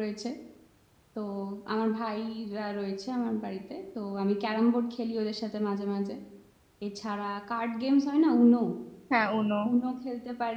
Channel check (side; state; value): both; identical; correlation 1.00